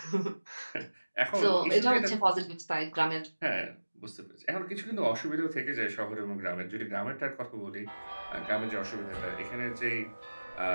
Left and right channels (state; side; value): inverted; both; correlation -1.00